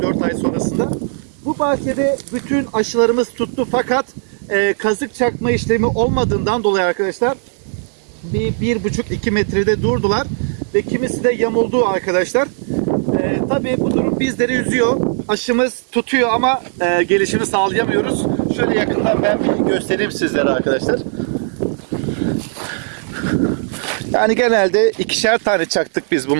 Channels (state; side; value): silent; left; digital silence